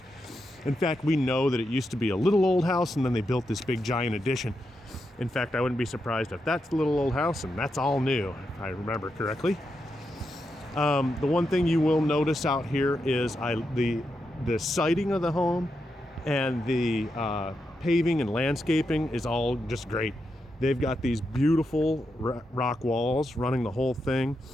In fact, we know that it used to be a little old house and then they built this big giant addition. In fact, I wouldn't be surprised if that's the little old house and that's all new, if I remember correctly. The one thing you will notice out here is the siding of the home and the paving and landscaping is all just great. They've got these beautiful rock walls running the whole thing.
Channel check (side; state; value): both; normal; correlation 0.85